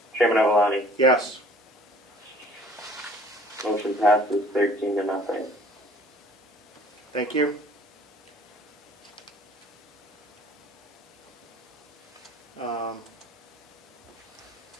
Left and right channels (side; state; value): both; normal; correlation 0.52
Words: Chairman Avalani? Yes. Motion passes 13-0. Thank you.